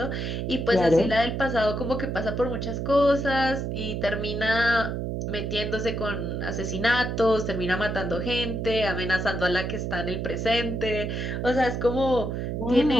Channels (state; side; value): noise; right; hum, 3 dB below the sound